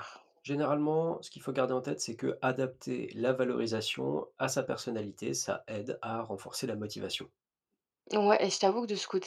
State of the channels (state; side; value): identical; both; correlation 1.00